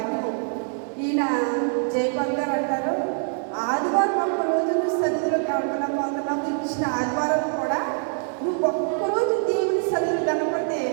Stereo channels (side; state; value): left; silent; 62 dB below the other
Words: ఈయన జయపాల్ గారు అంటారు, ఆదివారం ఒక్కరోజు నువ్వు సన్నిధిలో గడపలేకపోతున్నావు, ఇచ్చిన ఆదివారం కూడా నువ్వు ఒక్కరోజు దేవుని సన్నిధిలో గడపడితే